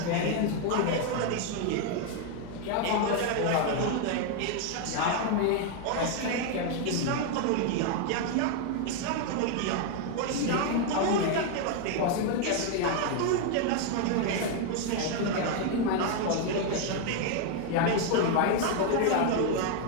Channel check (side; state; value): both; different; correlation 0.01